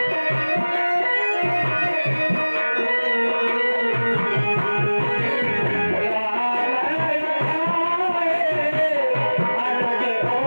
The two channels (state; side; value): inverted; both; correlation -1.00